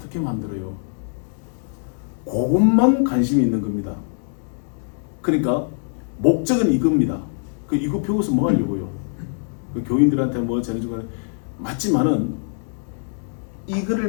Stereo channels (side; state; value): right; silent; digital silence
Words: 만들어요? 그것만 관심이 있는 겁니다. 그러니까 목적은 이겁니다. 이거 배워서 뭐 하려고요? 교인들한테 뭐 전해주고 맞지만은